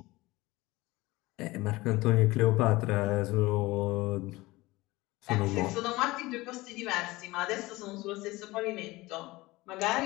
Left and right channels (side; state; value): right; quieter; 20.5 dB